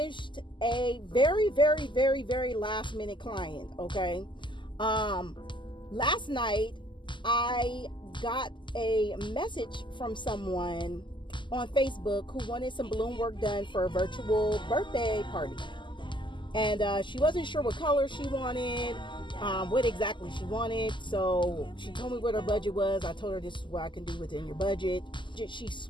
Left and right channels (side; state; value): right; late; 0.23 ms